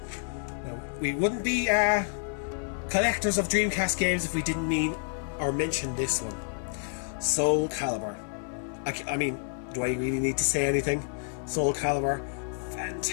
Now, we wouldn't be collectors of Dreamcast games if we didn't mean or mention this one. Soul Calibur. I mean, do I really need to say anything? Soul Calibur,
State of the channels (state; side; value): silent; right; digital silence